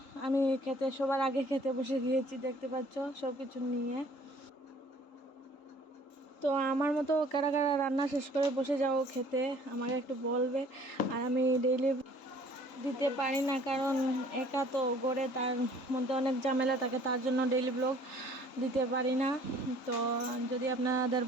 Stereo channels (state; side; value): late; right; 3.8 ms